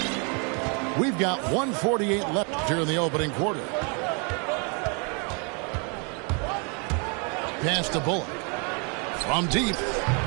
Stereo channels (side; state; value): left; quieter; 35.5 dB